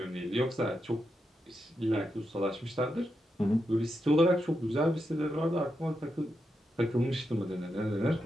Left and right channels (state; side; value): normal; both; correlation 0.85